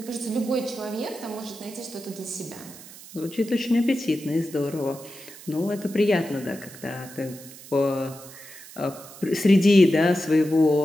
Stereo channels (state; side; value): noise; right; hiss, 17 dB below the sound